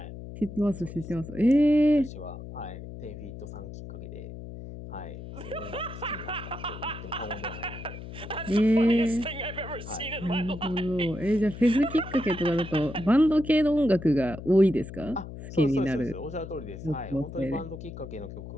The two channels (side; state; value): left; noise; hum, 11 dB below the sound